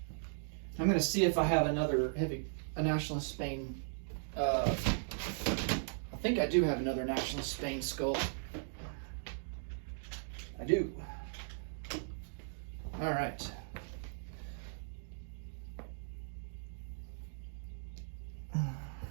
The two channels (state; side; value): silent; left; digital silence